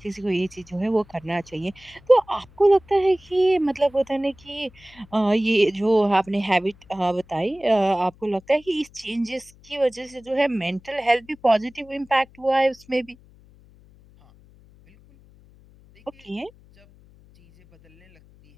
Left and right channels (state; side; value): noise; left; hum, 27 dB below the sound